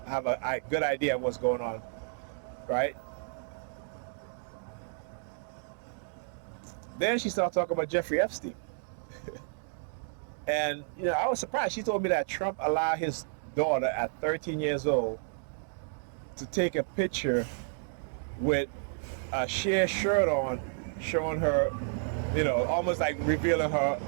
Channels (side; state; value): left; silent; digital silence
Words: have a good idea of what's going on, right? Then she started talking about Jeffrey Epstein. And, I was surprised. She told me that Trump allowed his daughter at 13 years old to take a picture with a sheer shirt on, showing her, almost like revealing